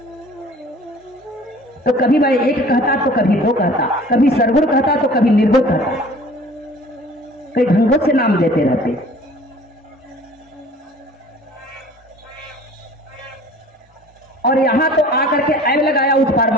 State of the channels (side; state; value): both; normal; correlation 0.48